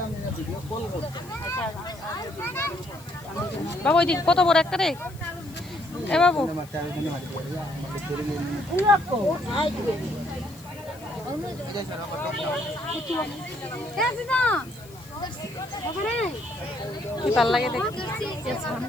বাবু ওই দিক কত বড় একটা রে এ বাবু কি ভাল লাগে দেখতে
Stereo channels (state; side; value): noise; left; hiss, 22 dB below the sound